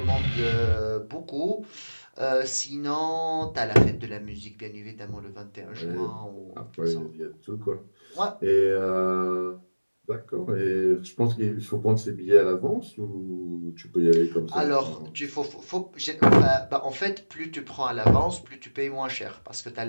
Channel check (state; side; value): inverted; both; correlation -1.00